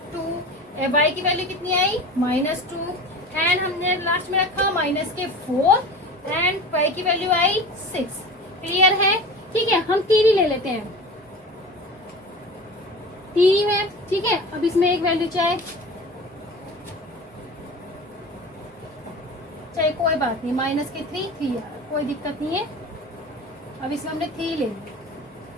2, y की वैल्यू कितनी आई -2, एंड हमने लास्ट में रखा माइनस के 4 एंड y की वैल्यू आई 6। क्लियर है। ठीक है, हम 3 ही ले लेते हैं, 3 है, ठीक है। अब इसमें एक वैल्यू चाहे कोई बात नहीं, माइनस के 3 आ रहा, कोई दिक्कत नहीं है। अब इसमें हमने 3 ले लिया,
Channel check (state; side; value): normal; both; correlation 0.35